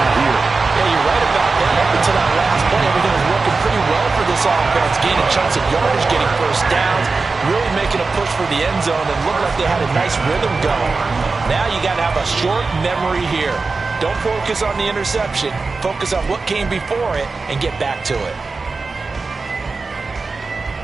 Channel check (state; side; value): quieter; left; 4.1 dB